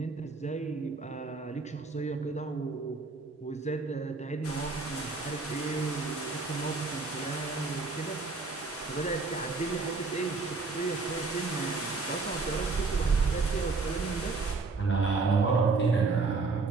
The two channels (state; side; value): quieter; left; 4.0 dB